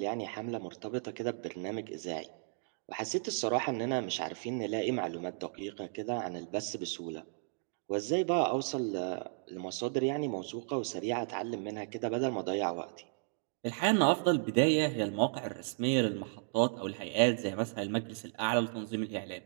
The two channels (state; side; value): silent; left; digital silence